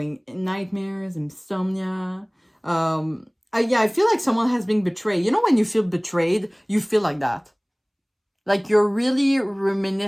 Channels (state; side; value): identical; both; correlation 1.00